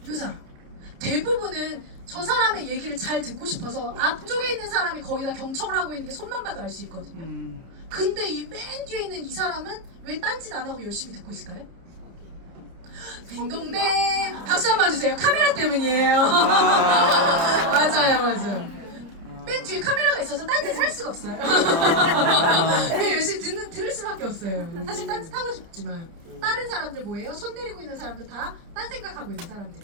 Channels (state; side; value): late; left; 30 ms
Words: 요 사람. 대부분은 저 사람의 얘기를 잘 듣고 싶어서 앞쪽에 있는 사람이 거의 다 경청을 하고 있는 게 손만 봐도 알 수 있거든요. 근데 이 맨 뒤에 있는 이 사람은 왜 딴짓 안 하고 열심히 듣고 있을까요? 딩동댕! 박수 한번 주세요. 카메라 때문이에요. 맞아요. 맨 뒤에 카메라가 있어서 딴짓을 할 수가 없어요. 그냥 열심히 들을 수밖에 없어요. 사실 딴짓 하고 싶지만 다른 사람들 뭐예요? 손 내리고 있는 사람들 다 딴 생각하고 있는